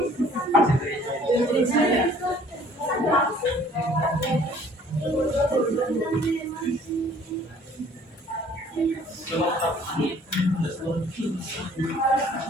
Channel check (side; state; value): both; normal; correlation 0.55